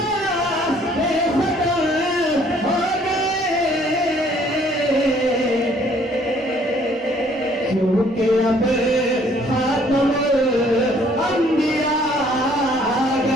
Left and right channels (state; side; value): normal; both; correlation 0.61